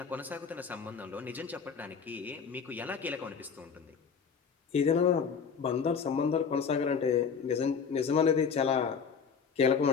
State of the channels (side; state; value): right; quieter; 6.3 dB